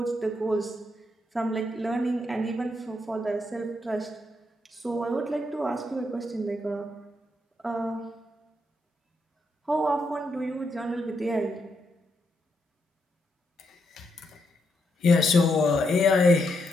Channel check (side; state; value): both; normal; correlation 0.80